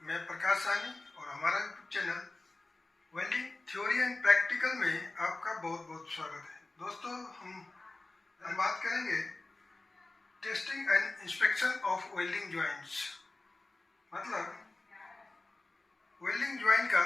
मैं प्रकाश सानी और हमारा YouTube channel welding theory and practical में आपका बहुत बहुत स्वागत है। दोस्तों हम बात करेंगे testing and inspection of welding joints, मतलब वेल्डिंग जॉइंट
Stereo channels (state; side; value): quieter; right; 3.1 dB